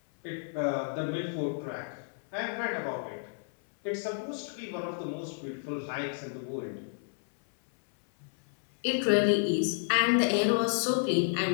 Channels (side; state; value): right; silent; 57 dB below the other